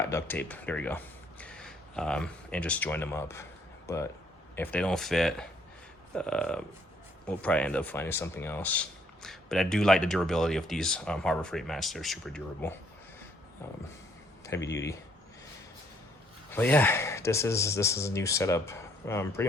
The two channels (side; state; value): both; normal; correlation 0.66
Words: duct tape, there you go. And just join them up. But if they don't fit, we'll probably end up finding something else. But I do like the durability of these Harbor Freight mats. They're super durable, heavy duty. But yeah, this is a new setup. Pretty